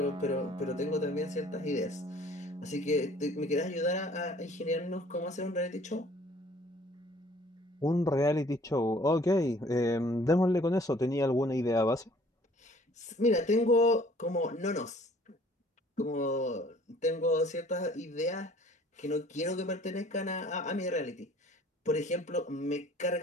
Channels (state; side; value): normal; both; correlation 0.55